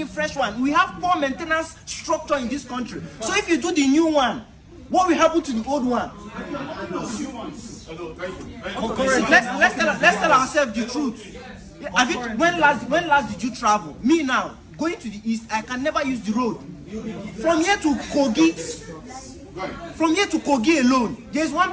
fresh one. We have poor maintenance structure in this country. So if you do the new one, what will happen to the old one? Let's tell ourselves the truth. When last did you travel? Me now, going to the east, I can never use the road. From here to Kogi alone, there's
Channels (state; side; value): identical; both; correlation 1.00